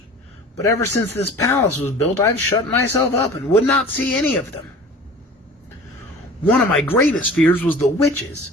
but ever since this palace was built, I've shut myself up and would not see any of them. One of my greatest fears was the witches,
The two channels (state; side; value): normal; both; correlation 0.42